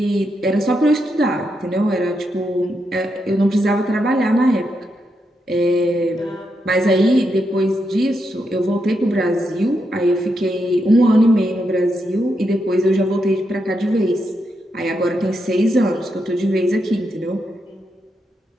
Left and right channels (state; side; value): normal; both; correlation 0.83